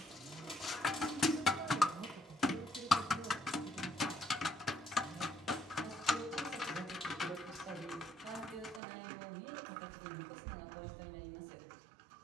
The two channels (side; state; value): left; drops out; at 8.8 s